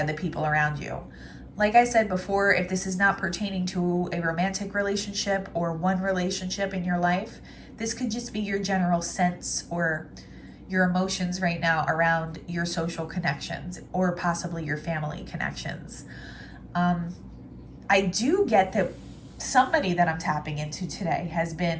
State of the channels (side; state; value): both; identical; correlation 1.00